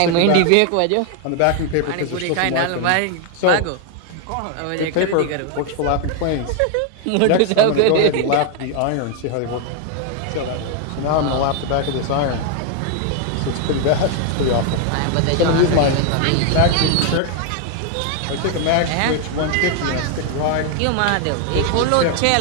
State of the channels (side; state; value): both; different; correlation 0.00